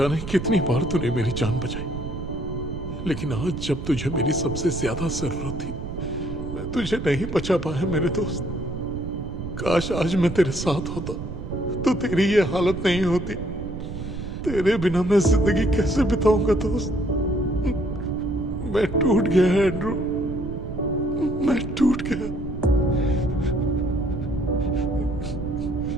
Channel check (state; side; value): noise; right; rumble, 7 dB below the sound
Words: कितनी बार तूने मेरी जान बचाई, लेकिन आज जब तुझे मेरी सबसे ज्यादा जरूरत थी, मैं तुझे नहीं बचा पाया मेरे दोस्त। काश आज मैं तेरे साथ होता तो तेरी ये हालत नहीं होती। तेरे बिना मैं जिंदगी कैसे बिताऊंगा दोस्त? मैं टूट गया एंड्रू, मैं टूट गया।